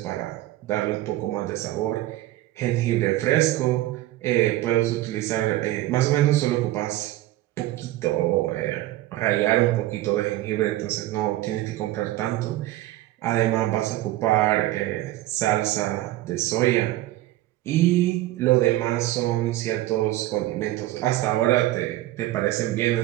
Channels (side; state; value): left; quieter; 15.9 dB